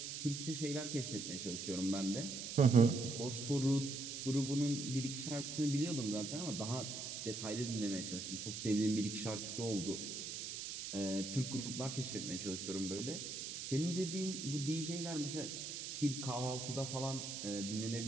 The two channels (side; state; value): right; noise; hiss, 6 dB below the sound